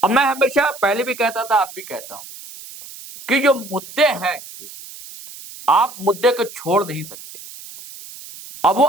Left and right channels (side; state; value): right; noise; hiss, 16 dB below the sound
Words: अब मैं हमेशा पहले भी कहता था, अब भी कहता हूं कि जो मुद्दे हैं, आप मुद्दे को छोड़ नहीं सकते। अब वो